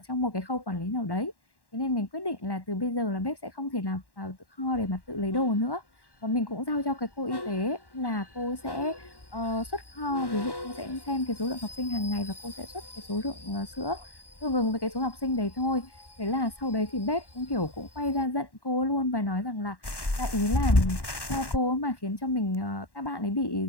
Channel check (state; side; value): late; right; 1.1 ms